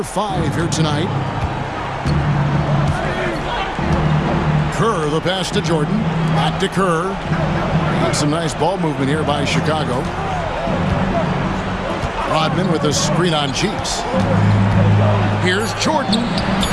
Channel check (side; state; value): both; identical; correlation 1.00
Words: 5 here tonight. Kerr, the pass to Jordan. Back to Kerr. And some nice ball movement here by Chicago. Rodman with a screen on Cheeks. Here's Jordan.